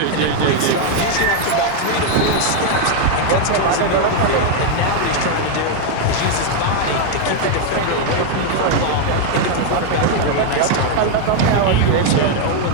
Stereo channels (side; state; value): both; different; correlation 0.01